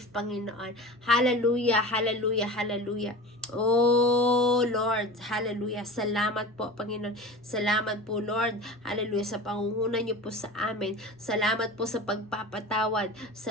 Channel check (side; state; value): both; normal; correlation 0.33